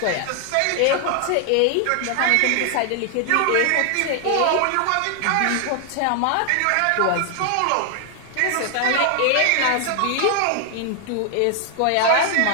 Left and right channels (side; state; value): both; different; correlation 0.00